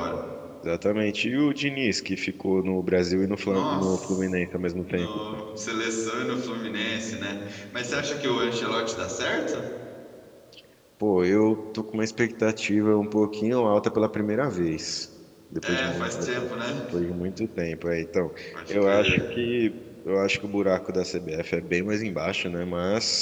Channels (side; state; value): both; identical; correlation 1.00